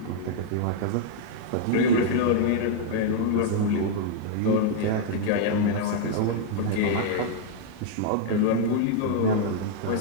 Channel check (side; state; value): both; different; correlation -0.01